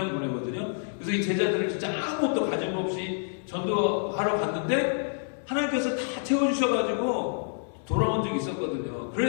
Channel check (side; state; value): right; silent; 59 dB below the other